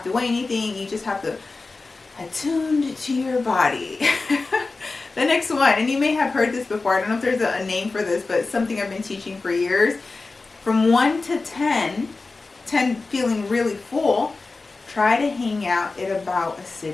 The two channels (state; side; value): quieter; right; 3.7 dB